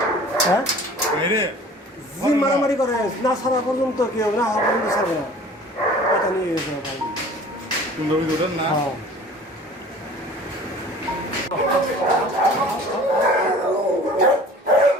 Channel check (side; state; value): both; normal; correlation 0.46